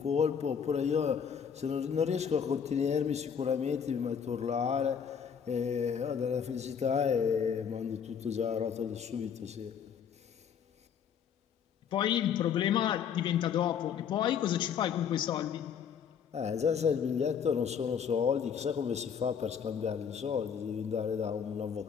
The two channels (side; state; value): right; quieter; 7.5 dB